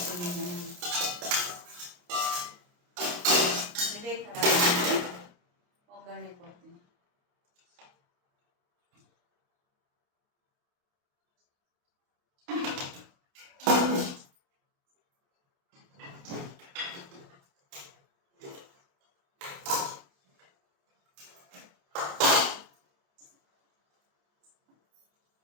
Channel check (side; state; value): left; late; 28 ms